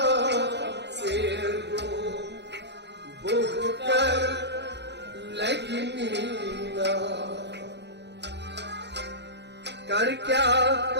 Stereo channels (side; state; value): left; late; 0.50 ms